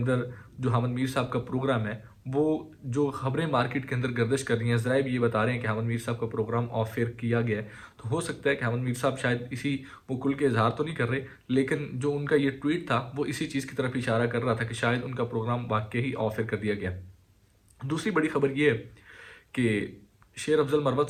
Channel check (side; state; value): both; identical; correlation 1.00